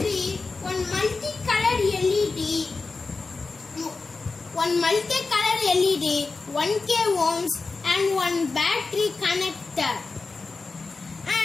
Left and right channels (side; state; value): right; quieter; 4.0 dB